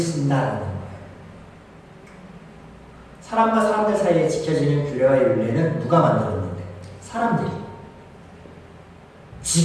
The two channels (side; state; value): both; identical; correlation 1.00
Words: 거예요. 사람과 사람들 사이에 지켜지는 규례와 율례는 누가 만들었는데? 사람들이.